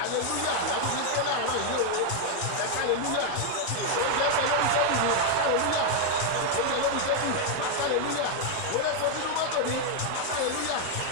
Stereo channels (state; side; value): different; both; correlation 0.00